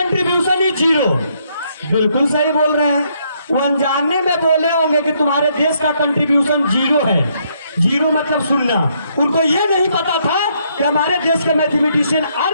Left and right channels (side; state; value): both; inverted; correlation -0.72